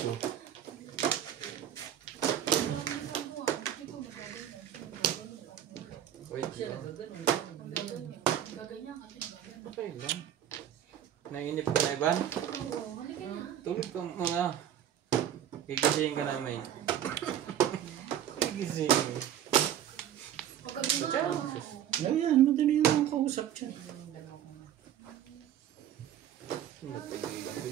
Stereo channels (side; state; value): left; quieter; 10.6 dB